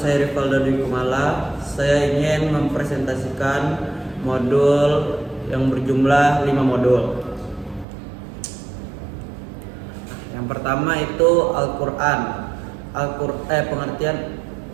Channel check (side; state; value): left; drops out; at 7.9 s